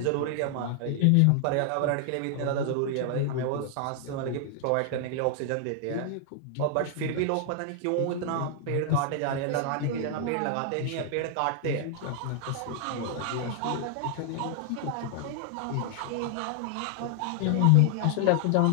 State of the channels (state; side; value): different; both; correlation 0.00